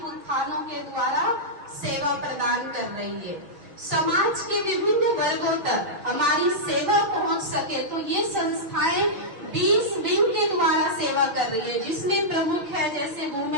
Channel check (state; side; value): late; left; 6.3 ms